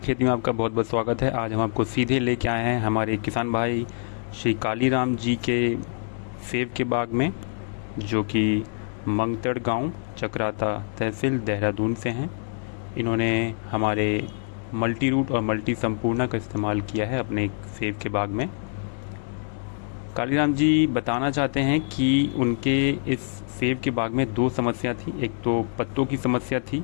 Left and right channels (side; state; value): right; silent; digital silence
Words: खेती में आपका बहुत बहुत स्वागत है। आज हम आपको सीधे लेके आए हैं हमारे किसान भाई श्री कालीराम जी के सेब के बाग में, जो कि मंगतड़ गांव, चक्राता तहसील, देहरादून से हैं। इन्होंने हमारे मल्टी रूट और मल्टी संपूर्णा का इस्तेमाल किया है अपने सेब के बाग में। कालीराम जी बताना चाहते हैं कि उनके इस सेब के बाग में दो समस्या थी। एक तो पत्तों की समस्या थी